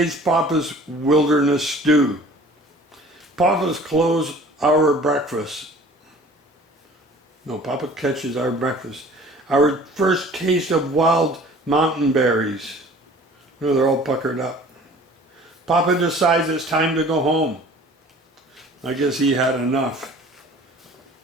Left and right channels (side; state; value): both; normal; correlation 0.48